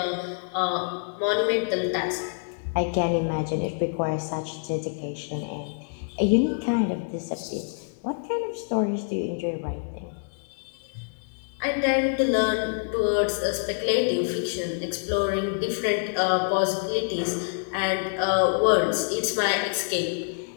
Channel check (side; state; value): right; silent; digital silence